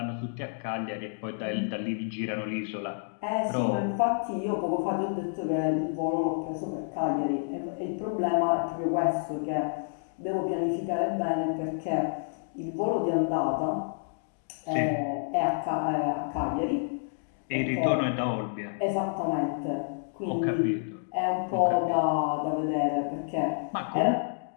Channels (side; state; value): right; silent; digital silence